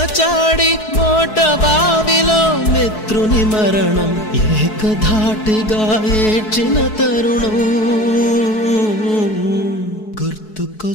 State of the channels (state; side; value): late; right; 4.7 ms